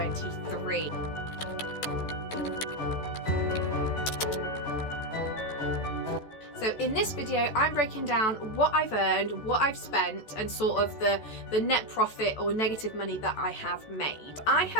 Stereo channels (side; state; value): right; late; 14 ms